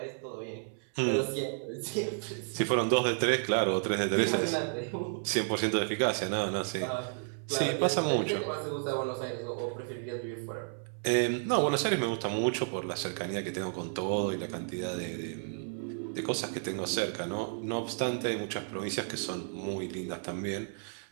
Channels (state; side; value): silent; left; 56 dB below the other